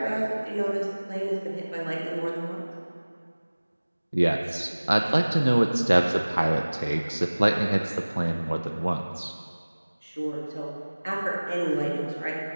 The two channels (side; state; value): both; inverted; correlation -1.00